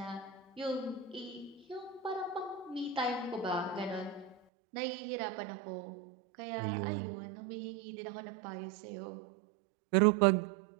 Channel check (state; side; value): drops out; left; at 4.4 s